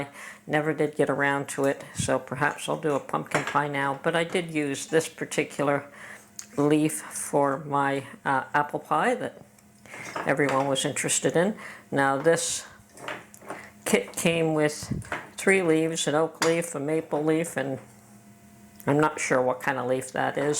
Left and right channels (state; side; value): identical; both; correlation 1.00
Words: Never did get around to it, so perhaps I'll do a pumpkin pie now. But I did use this particular leaf for my apple pie that everyone was interested in. Now this kit came with 3 leaves, an oak leaf, a maple leaf, and I'm not sure what kind of leaf that